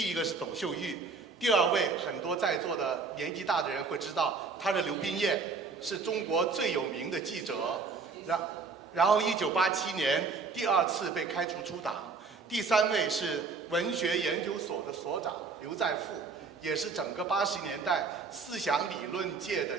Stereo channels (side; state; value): left; quieter; 4.6 dB